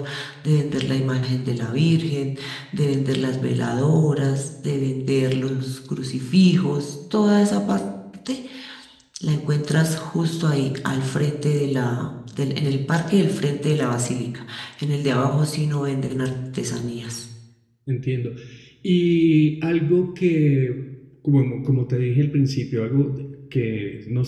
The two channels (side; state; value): both; identical; correlation 1.00